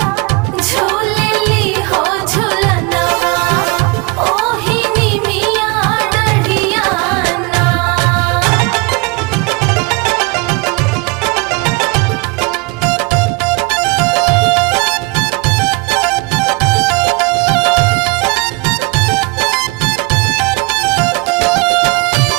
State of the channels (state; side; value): quieter; left; 27.9 dB